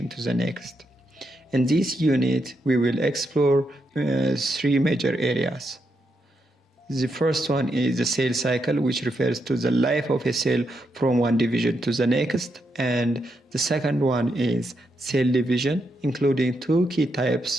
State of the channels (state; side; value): normal; both; correlation 0.82